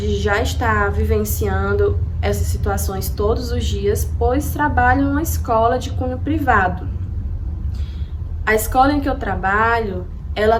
de já estar vivenciando essas situações todos os dias, pois trabalho em uma escola de cunho privado. A escola em que eu trabalho, ela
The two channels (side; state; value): both; identical; correlation 1.00